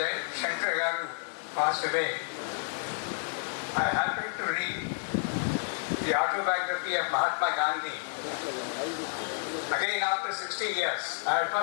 Shankar Garu passed away, I happened to read the autobiography of Mahatma Gandhi. Again, after 60 years, I had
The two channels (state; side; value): silent; right; 57 dB below the other